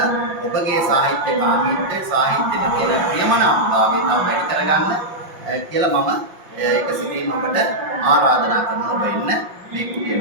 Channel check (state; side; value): late; left; 5.7 ms